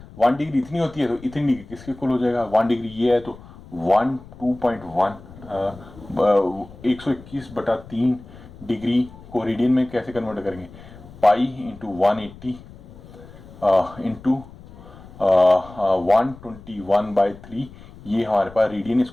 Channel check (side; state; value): left; noise; rumble, 19 dB below the sound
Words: 1 डिग्री इतनी होती है तो इतनी डिग्री किसके इक्वल हो जाएगा, 1 डिग्री ये है तो 2.1 121/3 डिग्री को रेडियन में कैसे कन्वर्ट करेंगे, पाई इंटू 180 इंटू 121/3, ये हमारे पास रेडियन,